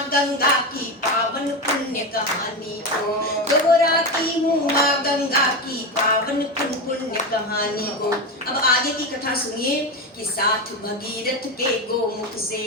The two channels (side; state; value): both; normal; correlation 0.17